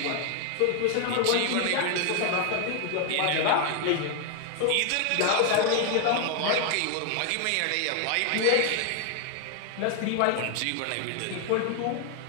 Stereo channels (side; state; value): both; different; correlation 0.00